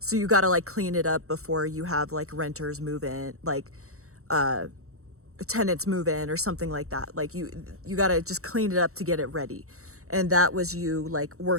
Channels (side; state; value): left; late; 0.64 ms